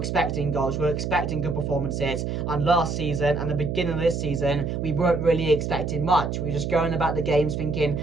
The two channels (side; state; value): right; noise; hum, 2 dB below the sound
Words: goals, we're expecting good performances. And last season and the beginning of this season, we weren't really expecting much. We were just going about the games thinking,